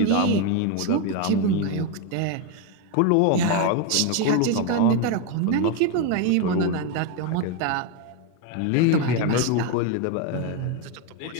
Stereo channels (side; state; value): both; different; correlation 0.02